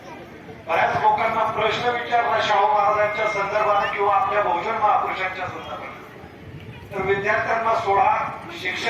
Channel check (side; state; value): both; identical; correlation 1.00